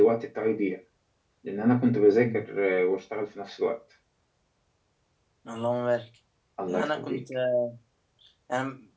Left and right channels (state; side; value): identical; both; correlation 1.00